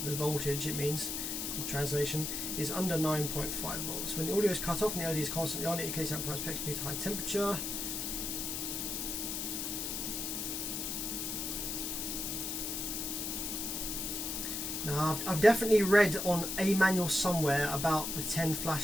the voltage it means, the translation, is under 9.5 volts. When the audio is cut off and the LED is constantly on, it indicates amplifier protection due to high temperature. Now, I've definitely read on a manual somewhere about the 10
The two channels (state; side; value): noise; left; hiss, 3 dB below the sound